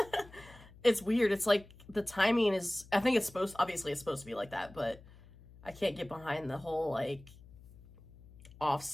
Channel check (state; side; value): noise; left; hum, 22 dB below the sound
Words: It's weird. It's like the timing is, I think it's obviously it's supposed to be like that, but I can't get behind the whole like